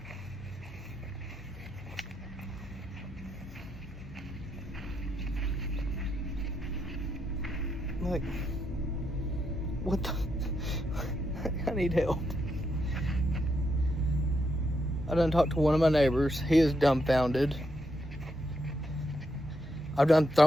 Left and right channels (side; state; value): both; normal; correlation 0.80